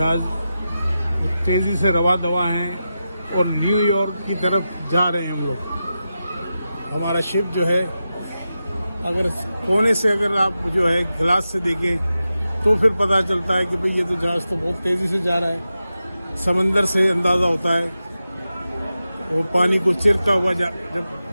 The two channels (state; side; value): inverted; both; correlation -0.91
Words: तेज़ी से रवा दवा हैं और न्यूयॉर्क की तरफ जा रहे हैं हम लोग। हमारा शिप जो है, अगर कोने से अगर आप जो है गिलास से देखें तो फिर पता चलता है कि भाई ये तो जहाज़ तो बहुत तेज़ी से जा रहा है। समंदर से अंदाज़ा होता है, वो पानी को चिरता हुआ जब